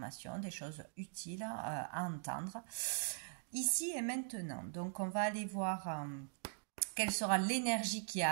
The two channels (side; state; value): left; silent; digital silence